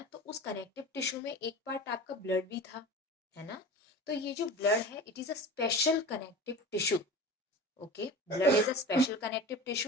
तो उस कनेक्टिव टिश्यू में एक पार्ट आपका ब्लड भी था, है ना। तो ये जो ब्लड है, it is a special connective tissue. Okay, blood is a special connective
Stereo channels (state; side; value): normal; both; correlation 0.35